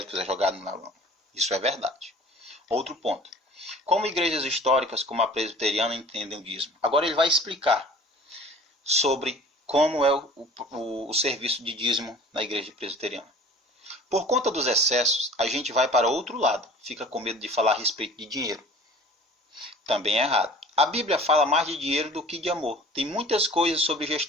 é jogado na lama. Isso é verdade. Outro ponto. Como igrejas históricas como a presbiteriana entendem o dízimo? Agora ele vai explicar sobre como é o serviço de dízimo na igreja presbiteriana. Por conta dos excessos, a gente vai para outro lado, fica com medo de falar a respeito de dinheiro. Também é errado. A Bíblia fala mais de dinheiro do que de amor. Tem muitas coisas sobre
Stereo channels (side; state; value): both; normal; correlation 0.45